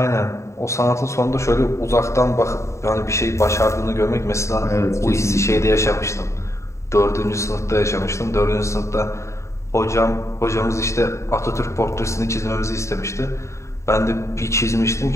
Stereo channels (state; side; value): late; right; 0.14 ms